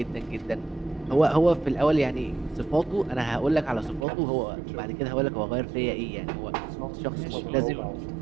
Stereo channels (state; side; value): drops out; left; at 4.0 s